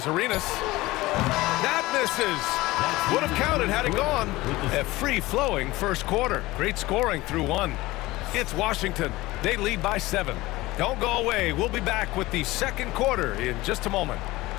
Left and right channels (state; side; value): quieter; right; 19.3 dB